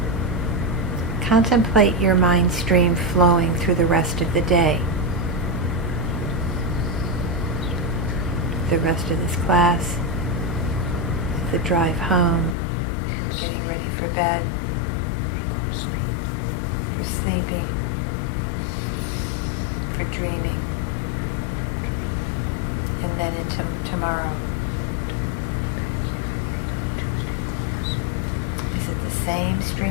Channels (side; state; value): right; drops out; at 12.6 s